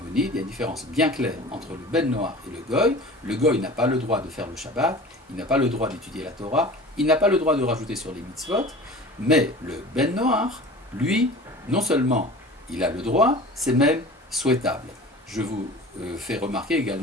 il y a une différence bien claire entre le ben noach et le goy. Le goy n'a pas le droit de faire le Shabbat, il n'a pas le droit d'étudier la Torah, il n'a pas le droit de rajouter sur les mitzvot, mais le ben noach, lui, non seulement il a le droit, c'est même souhaitable. Je vous fais remarquer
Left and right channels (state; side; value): normal; both; correlation 0.39